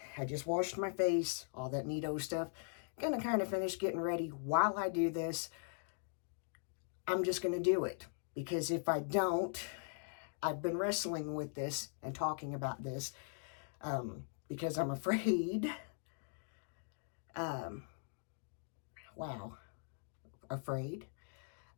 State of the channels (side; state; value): right; silent; digital silence